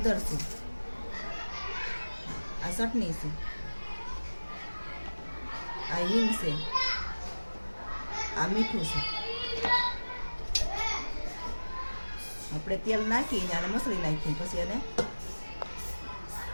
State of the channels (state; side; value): inverted; both; correlation -1.00